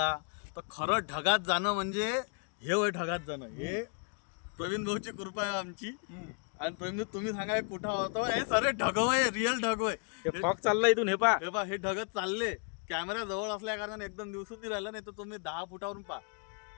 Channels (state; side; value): quieter; right; 39.6 dB